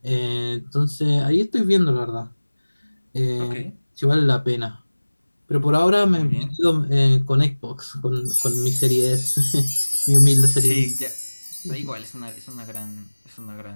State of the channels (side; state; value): both; inverted; correlation -1.00